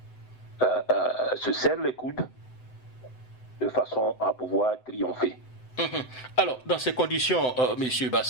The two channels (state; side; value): late; right; 7.9 ms